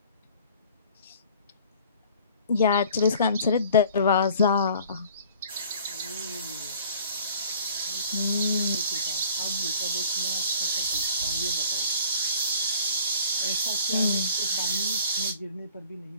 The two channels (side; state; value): both; inverted; correlation -0.51